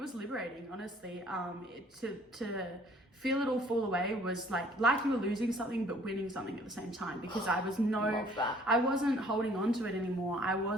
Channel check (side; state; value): both; normal; correlation 0.57